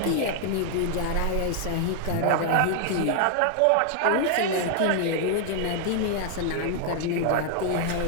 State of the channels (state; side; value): different; both; correlation 0.00